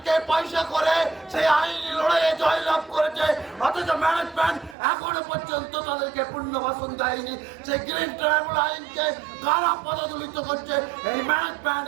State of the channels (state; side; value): drops out; left; at 4.8 s